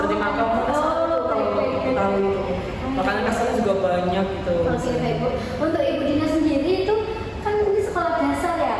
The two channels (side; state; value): both; identical; correlation 1.00